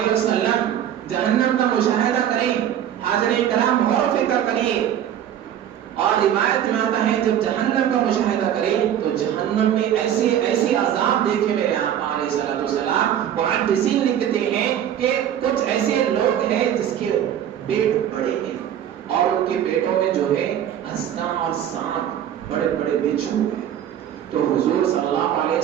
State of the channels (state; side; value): quieter; left; 10.3 dB